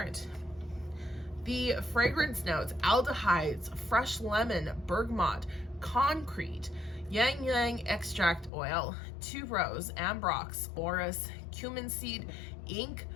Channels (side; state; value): right; drops out; at 8.5 s